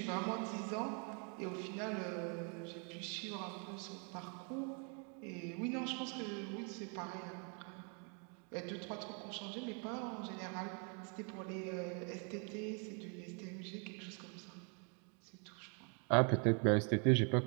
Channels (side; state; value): left; quieter; 38.6 dB